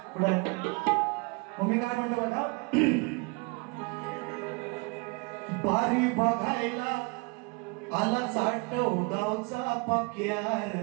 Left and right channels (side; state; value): left; quieter; 30.0 dB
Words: पुढे मग मी काय म्हणतो बघा, बारी बघायला आला चाटव गावचा पक्यार,